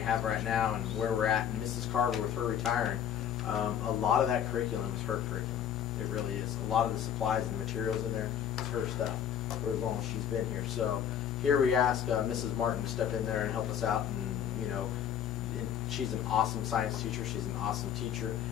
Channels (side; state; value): right; quieter; 9.3 dB